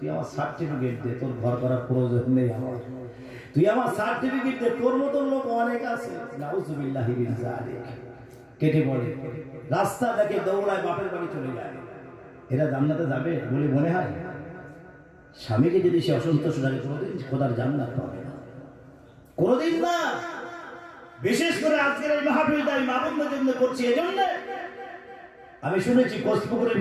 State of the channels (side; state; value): both; identical; correlation 1.00